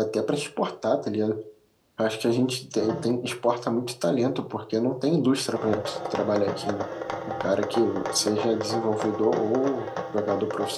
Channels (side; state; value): both; identical; correlation 1.00